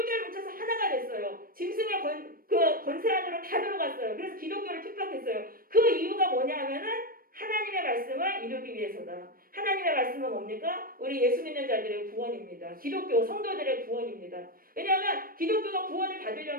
뭉쳐서 하나가 됐어요. 짐승의 권세 안으로 다 들어갔어요. 그래서 기독교를 핍박했어요. 그 이유가 뭐냐면은 하나님의 말씀을 이루기 위해서다. 하나님의 말씀은 뭡니까? 우리 예수 믿는 자들의 구원입니다. 기독교 성도들의 구원입니다. 왜냐하면 기독교가 구원을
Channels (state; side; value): late; left; 0.42 ms